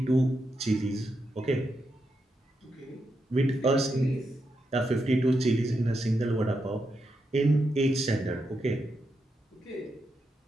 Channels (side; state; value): both; normal; correlation 0.84